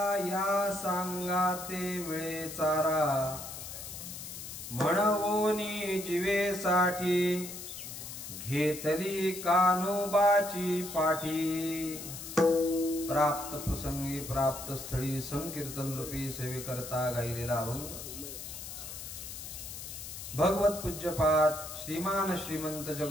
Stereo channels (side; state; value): left; noise; hiss, 10 dB below the sound